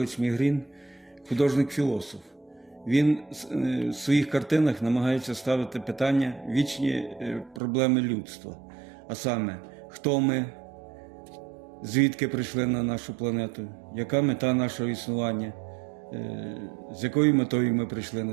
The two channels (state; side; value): drops out; left; at 7.6 s